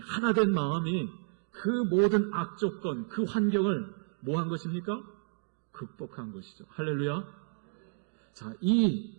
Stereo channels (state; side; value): silent; left; 57 dB below the other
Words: 마음이 그 모든 악조건, 그 환경을 뭐 한 것입니까? 극복한 것이죠. 할렐루야. 자, 이